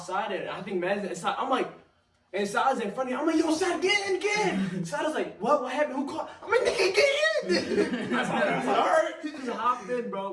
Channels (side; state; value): both; identical; correlation 1.00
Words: and I think Mad's inside. I'm like, and Side's in front of me. I'm like, yo, Side, get in. Side was like, what happened? Who caught? I'm like, nigga, get in. I was like, all right. He just hopped in,